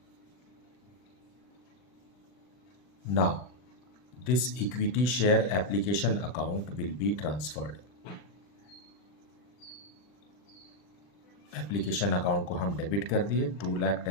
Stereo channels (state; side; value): late; right; 40 ms